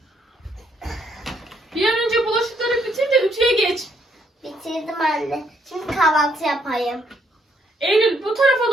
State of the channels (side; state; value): both; normal; correlation 0.71